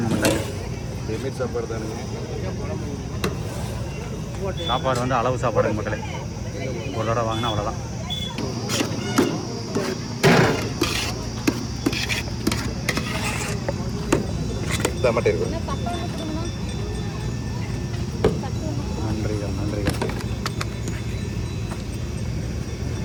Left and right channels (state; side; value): identical; both; correlation 1.00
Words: மக்களே. சாப்பாடு தானே, சாப்பாடு வந்து அளவு சாப்பாடுங்க மக்களே. ஒரு தடவை வாங்கினா அவ்வளோதான். நன்றிகள் நன்றிகள்.